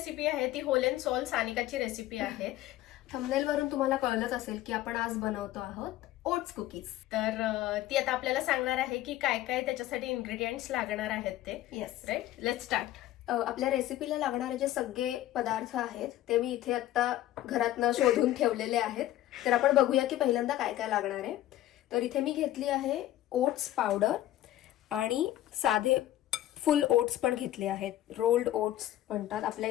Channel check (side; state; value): right; quieter; 14.1 dB